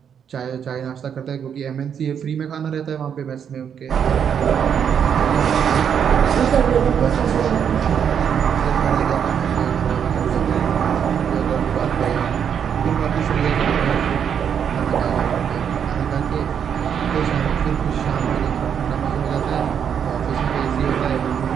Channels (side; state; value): left; quieter; 8.0 dB